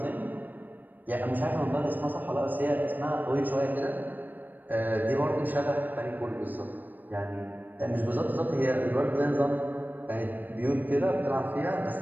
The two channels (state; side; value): late; left; 0.088 ms